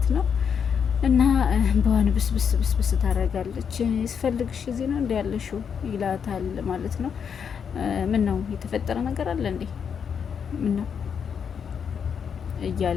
ነው። እና በዋን ብስብስ ታደርጋለች። ስፈልግሽ እዚህ ነው እንዲ ያለሽው ይላታል ማለት ነው። ምን ነው የተፈጠረ ነገር አለ እንዴ? ምን ነው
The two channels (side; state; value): right; quieter; 7.1 dB